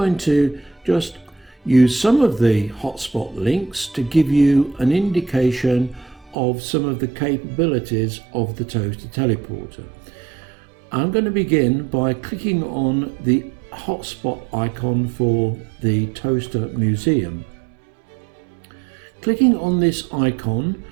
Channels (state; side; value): drops out; left; at 6.4 s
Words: to just use some of the hotspot links to give you an indication of some of the capabilities of the Toaster Teleporter. I'm going to begin by clicking on the hotspot icon for the Toaster Museum. Clicking on this icon